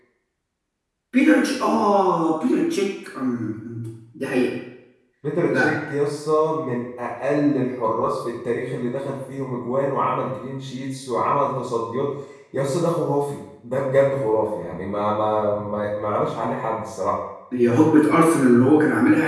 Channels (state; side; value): identical; both; correlation 1.00